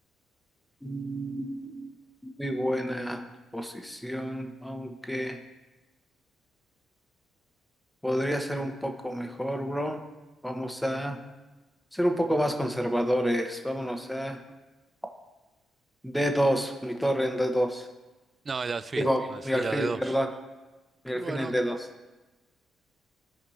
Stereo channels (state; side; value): normal; both; correlation 0.92